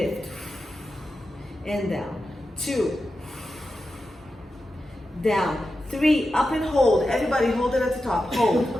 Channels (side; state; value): both; normal; correlation 0.91